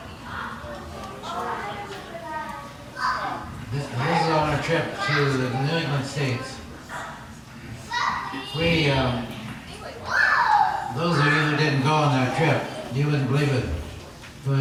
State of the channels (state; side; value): identical; both; correlation 1.00